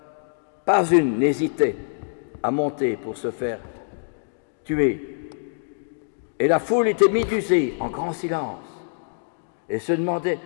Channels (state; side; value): silent; right; digital silence